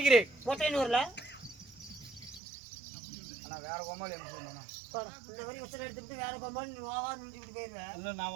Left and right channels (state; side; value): drops out; left; at 2.4 s